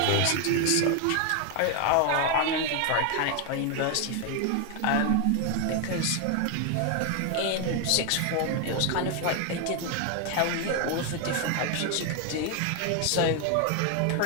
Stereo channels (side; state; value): both; different; correlation 0.01